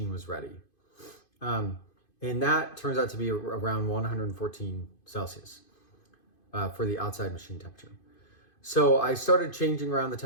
was ready. And that turns out to be around 114 Celsius for the outside machine temperature. So I started changing around the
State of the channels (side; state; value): right; late; 2.5 ms